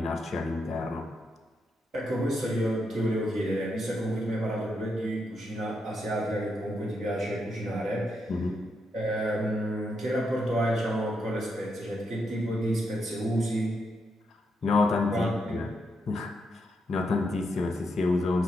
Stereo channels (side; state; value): both; normal; correlation 0.81